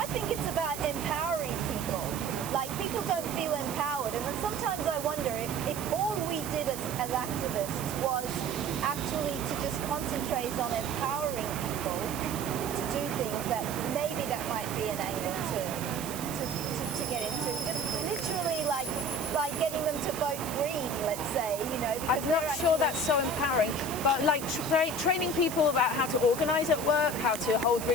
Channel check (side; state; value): right; noise; hiss, 9 dB below the sound